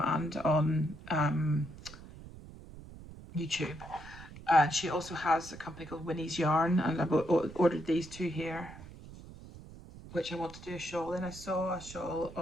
and on YouTube. And she also has a company called Winnie's Yarn, and I ordered these 2 here, which I want to do a shawl in. I saw a shawl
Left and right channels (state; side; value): noise; right; rumble, 16 dB below the sound